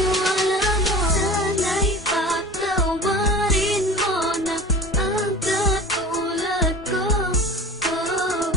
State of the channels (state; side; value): normal; both; correlation 0.36